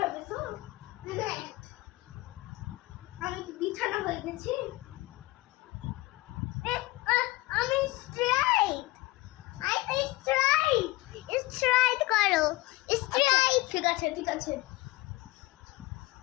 আমি কি বিছানা হয়ে গেছি? আমি স্ট্রাইট। I straight. স্ট্রাইট করো। স্ট্রাইট। ঠিক আছে ঠিক আছে।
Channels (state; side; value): quieter; right; 20.2 dB